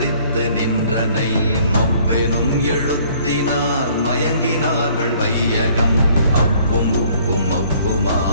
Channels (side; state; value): both; inverted; correlation -0.58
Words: நின்றனை, மவ்வெனும் எழுத்தினால் மயங்கினார்கள் வையகம். அவ்வும் உவ்வும்